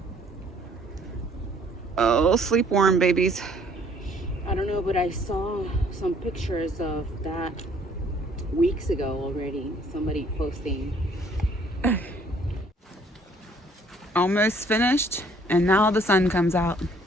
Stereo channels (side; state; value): both; normal; correlation 0.60